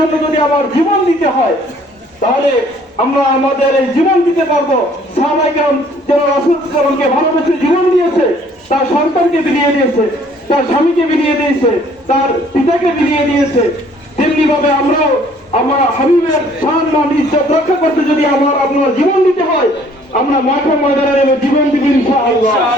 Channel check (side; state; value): both; normal; correlation 0.59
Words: যদি আমার জীবন দিতে হয়, তাহলে আমরা আমাদের এই জীবন দিতে পারবো। সাহাবায়ে কেরাম যারা রাসূল সাল্লাল্লাহু আলাইহি ওয়াসাল্লামকে ভালোবেসে জীবন দিয়েছে, তার সন্তানকে বিলিয়ে দিয়েছে, তার স্বামীকে বিলিয়ে দিয়েছে, তার পিতাকে বিলিয়ে দিয়েছে, তেমনি ভাবে আমরাও আমার হাবিবের সম্মান ইজ্জত রক্ষা করতে যদি আপনার জীবন দিতে হয়, আমরা মাঠে ময়দানে নেমে জীবন দিব ইনশাআল্লাহ।